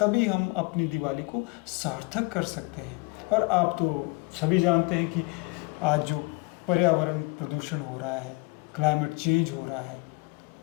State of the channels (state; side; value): quieter; right; 26.8 dB